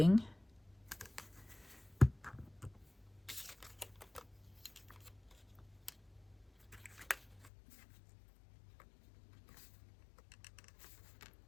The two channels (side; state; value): right; drops out; at 7.5 s